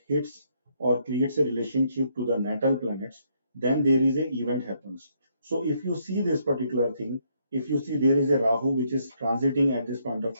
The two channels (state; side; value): inverted; both; correlation -0.72